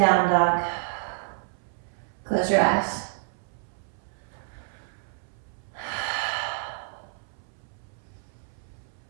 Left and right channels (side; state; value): left; silent; 59 dB below the other